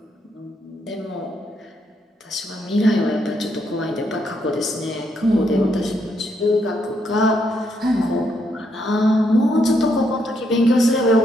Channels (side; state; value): both; normal; correlation 0.76